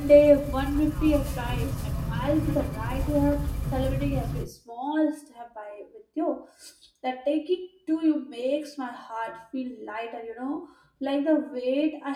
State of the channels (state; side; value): identical; both; correlation 1.00